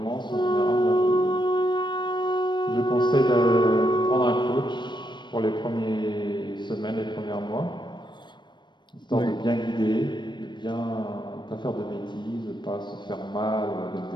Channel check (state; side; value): late; right; 0.22 ms